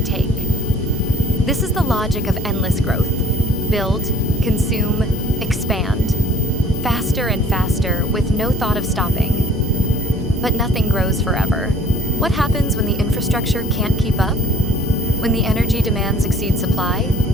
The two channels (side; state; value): both; normal; correlation 0.54